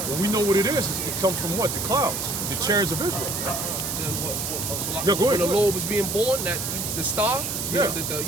Well, we know what it is. It comes from what? The clouds, the chariots of Israel. Go ahead. When the go Lord was being born, that the star,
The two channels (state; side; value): noise; right; hiss, 3 dB below the sound